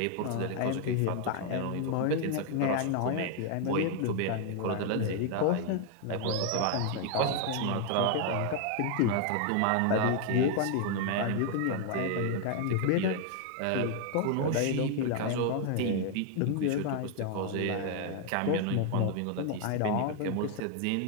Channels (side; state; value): both; different; correlation 0.00